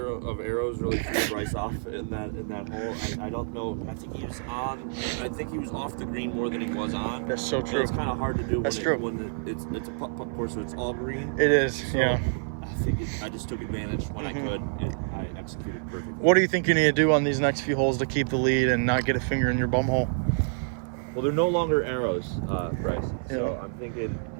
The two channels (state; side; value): silent; left; 56 dB below the other